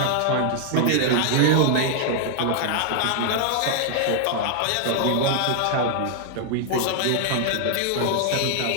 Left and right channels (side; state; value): both; different; correlation -0.01